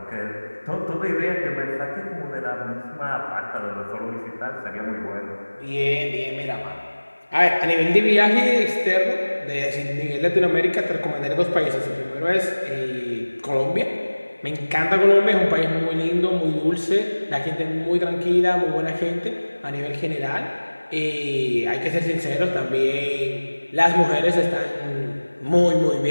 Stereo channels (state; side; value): inverted; both; correlation -1.00